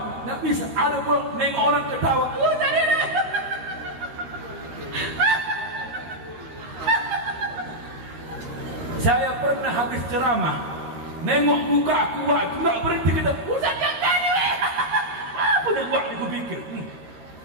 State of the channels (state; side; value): late; left; 13 ms